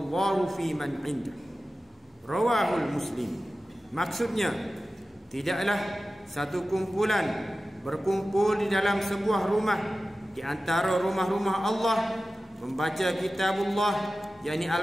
fi man 'indah." Rawahul Muslim. Maksudnya, tidaklah satu kumpulan berkumpul di dalam sebuah rumah di antara rumah-rumah Allah membaca kitabullah, yakni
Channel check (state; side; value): normal; both; correlation 0.95